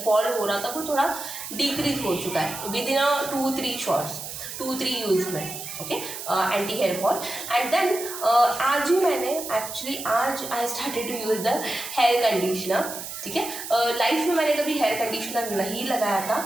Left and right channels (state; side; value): noise; right; hiss, 9 dB below the sound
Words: फॉल हो रहा था वो थोड़ा डिक्रीज हो चुका है विद इन 2-3 शॉट्स, 2-3 यूज़ में, okay, anti hair fall. And then आज ही मैंने एक्चुअली आज I started to use the hair conditioner. ठीक है, लाइफ में मैंने कभी हेयर कंडीशनर नहीं लगाया था